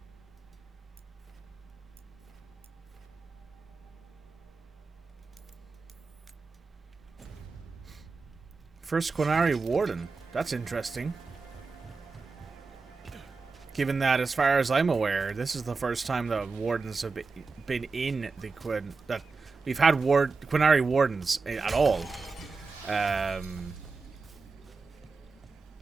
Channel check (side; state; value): left; quieter; 4.3 dB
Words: First Qunari Warden. That's interesting. Given that, as far as I'm aware, this is the first time the Wardens have been in the that we've had Qunari Wardens at all.